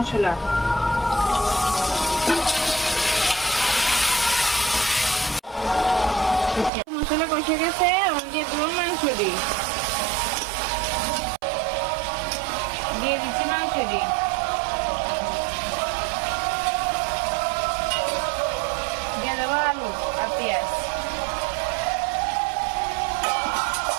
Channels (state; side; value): drops out; left; at 6.7 s